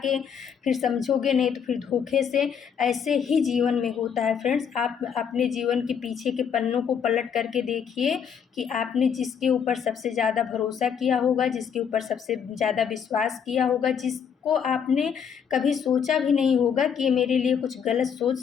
फिर समझोगे नहीं तो फिर धोखे से, ऐसे ही जीवन में होता है फ्रेंड्स। आप अपने जीवन के पीछे के पन्नों को पलट करके देखिए कि आपने जिसके ऊपर सबसे ज़्यादा भरोसा किया होगा, जिसके ऊपर सबसे ज़्यादा विश्वास किया होगा, जिसको आपने कभी सोचा भी नहीं होगा कि ये मेरे लिए कुछ गलत सोच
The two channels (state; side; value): quieter; right; 7.4 dB